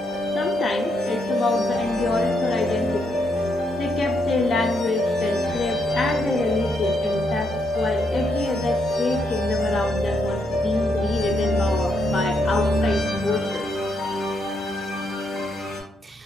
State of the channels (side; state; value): both; normal; correlation 0.77